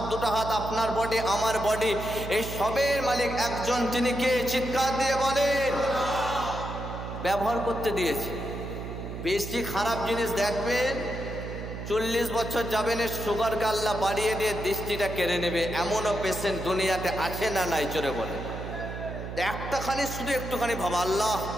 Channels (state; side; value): noise; right; hum, 8 dB below the sound